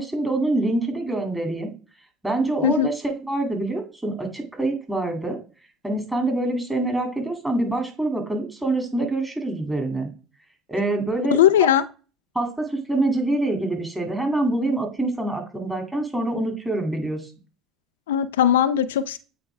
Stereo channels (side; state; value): both; normal; correlation 0.37